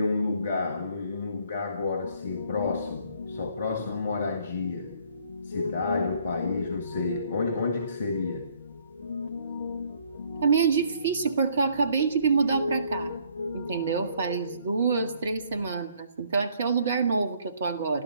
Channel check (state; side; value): inverted; both; correlation -0.64